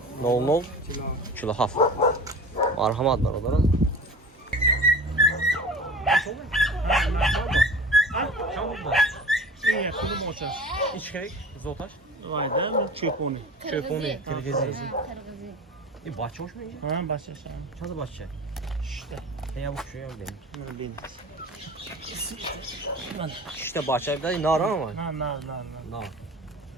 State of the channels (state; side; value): normal; both; correlation 0.38